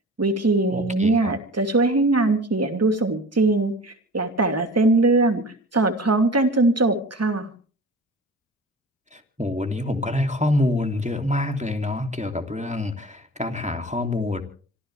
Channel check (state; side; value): normal; both; correlation 0.39